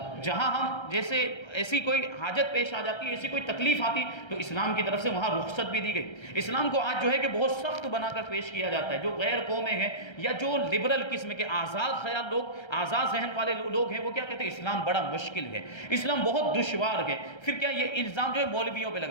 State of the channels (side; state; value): right; late; 1.3 ms